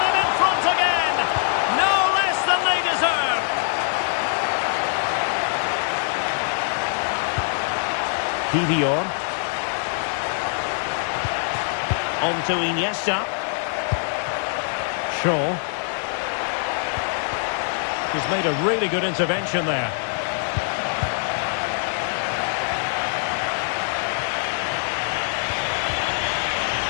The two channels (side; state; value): right; silent; digital silence